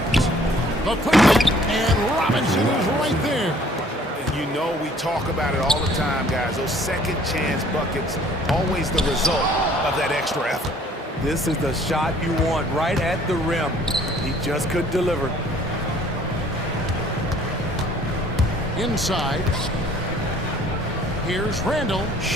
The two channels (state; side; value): normal; both; correlation 0.57